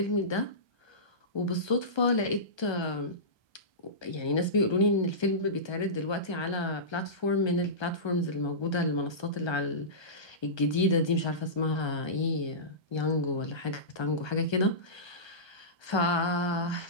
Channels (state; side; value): late; right; 1.3 ms